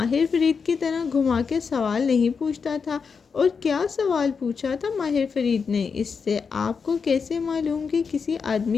فرید کی طرح گھما کے سوال نہیں پوچھتا تھا۔ اور کیا سوال پوچھا تھا ماہر فرید نے اس سے؟ آپ کو کیسے معلوم کہ کسی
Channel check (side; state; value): right; quieter; 5.6 dB